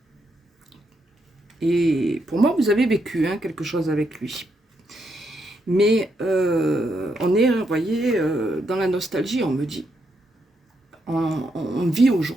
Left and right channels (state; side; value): normal; both; correlation 0.79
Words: Et pour moi, vous avez vécu hein, quelque chose avec lui. Mais on est, vous voyez, dans la nostalgie, on me dit. On vit